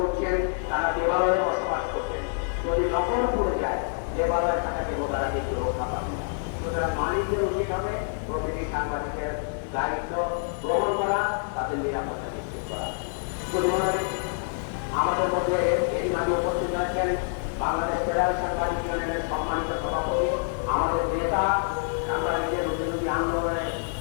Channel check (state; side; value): silent; right; digital silence